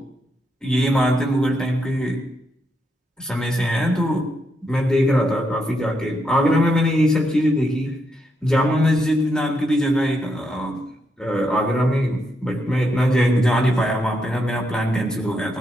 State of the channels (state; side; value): normal; both; correlation 0.80